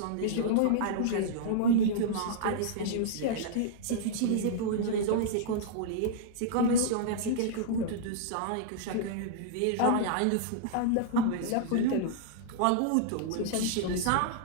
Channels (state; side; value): different; both; correlation -0.02